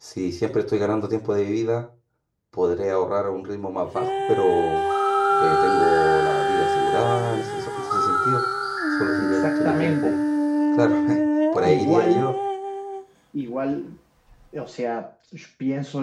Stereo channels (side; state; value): both; identical; correlation 1.00